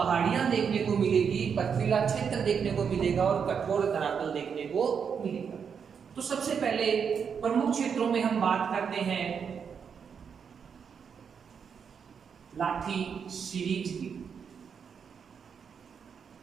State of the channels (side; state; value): left; quieter; 6.8 dB